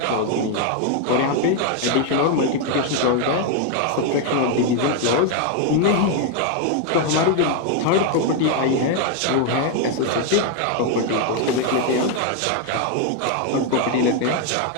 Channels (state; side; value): different; both; correlation 0.01